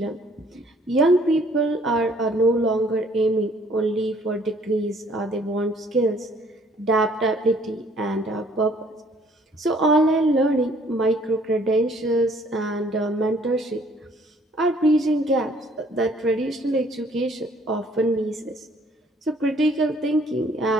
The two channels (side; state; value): both; normal; correlation 0.60